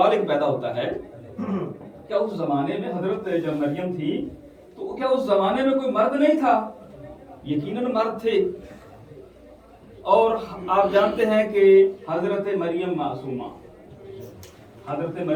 एक पैदा होता है, क्या उस जमाने में हजरत जब मरियम थी तो क्या उस जमाने में कोई मर्द नहीं था? यकीनन मर्द थे। और आप जानते हैं कि हजरत मरियम मासूमा, हजरत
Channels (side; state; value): both; identical; correlation 1.00